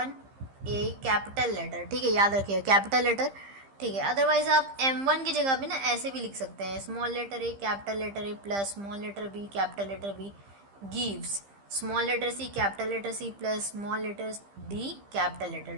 ए कैपिटल लेटर। ठीक है, याद रखिए कैपिटल लेटर। ठीक है, अदरवाइज आप M1 की जगह पे ना ऐसे भी लिख सकते हैं, small letter A capital letter A plus small letter B capital letter B gives small letter C capital letter C plus small letter D capital letter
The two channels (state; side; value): late; left; 15 ms